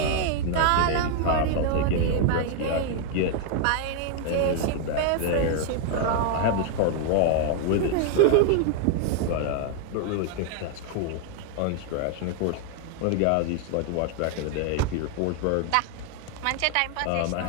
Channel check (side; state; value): both; different; correlation 0.00